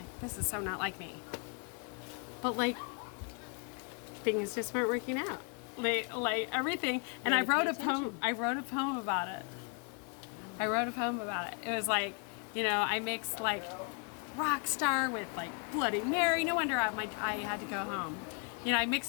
This is so not like me. But things just weren't working out. Everything. And I wrote a poem. I wrote a poem about it. It was I mixed rock star with Bloody Mary. No wonder I had to go home. I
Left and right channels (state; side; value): quieter; right; 38.7 dB